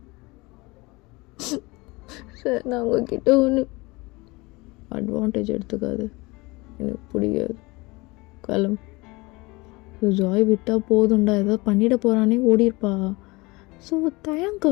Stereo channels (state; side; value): quieter; right; 23.9 dB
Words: சார். நான் உங்ககிட்ட ஒன்று அட்வான்டேஜ் எடுத்துக்காது, எனக்கு பிடிக்காது. கிளம்பு. ஸோ ஜாய் விட்டால் போதும்டா, ஏதாவது பண்ணிட போகிறானே ஓடிருப்பா. ஸோ